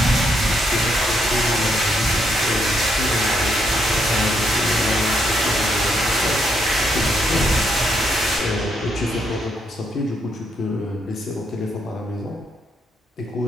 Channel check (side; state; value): both; normal; correlation 0.77